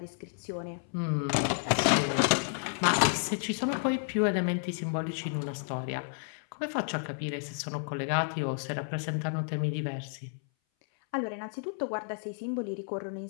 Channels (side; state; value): right; silent; 57 dB below the other